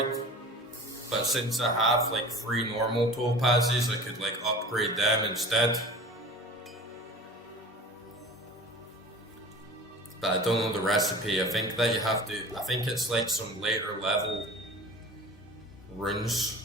but since I have like 3 normal topazes, I could like upgrade them instead. But I don't know the recipe. I think that you have to, I think it's like some later level runes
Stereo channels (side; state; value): both; normal; correlation 0.40